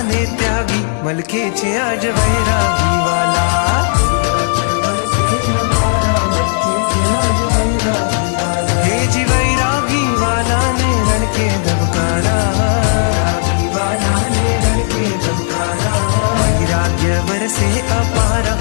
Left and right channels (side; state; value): right; silent; digital silence